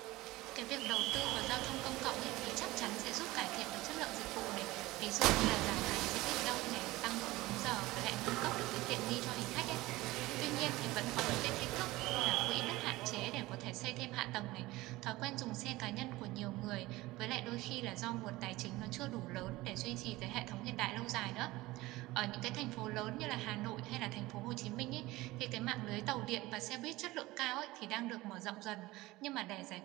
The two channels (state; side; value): quieter; left; 19.3 dB